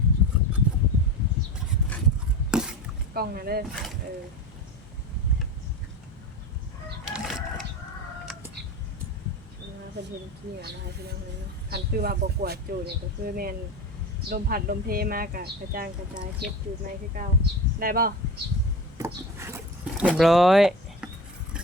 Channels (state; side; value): normal; both; correlation 0.29